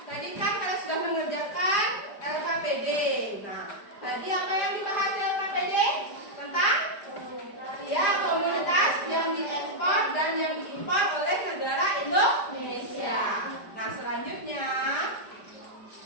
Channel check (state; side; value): late; right; 5.1 ms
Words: Tadi kan kalian sudah mengerjakan LKPD. Nah, tadi apa yang dibahas di LKPD? Tentang ya komoditas yang diekspor dan yang diimpor oleh negara Indonesia. Nah, selanjutnya